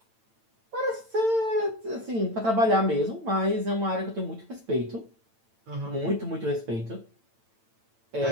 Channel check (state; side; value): late; left; 8.9 ms